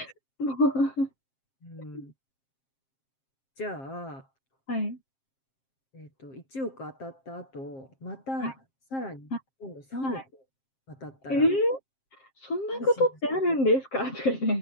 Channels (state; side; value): late; right; 7.5 ms